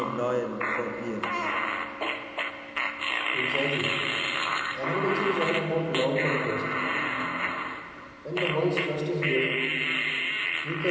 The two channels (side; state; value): both; identical; correlation 1.00